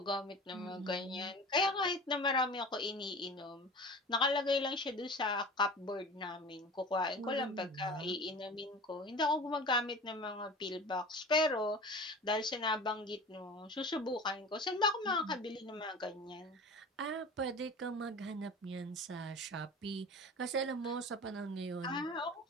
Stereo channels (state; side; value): normal; both; correlation 0.37